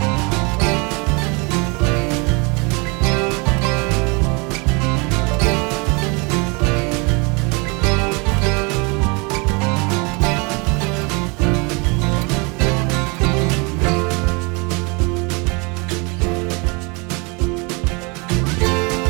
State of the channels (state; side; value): quieter; left; 29.8 dB